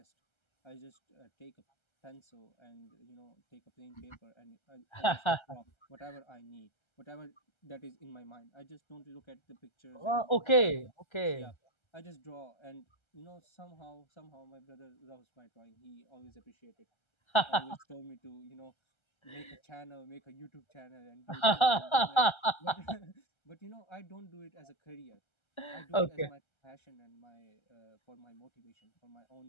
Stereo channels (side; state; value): right; late; 1.3 ms